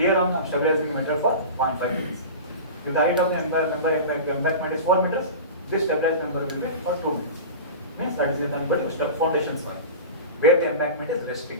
I am stabilizing the meter for 0.5 meters. If the height of the embankment is 4 meters, this stabilized member will be for 2 meters. Means that is nothing but foundation soil, where the embankment is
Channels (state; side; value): inverted; both; correlation -0.31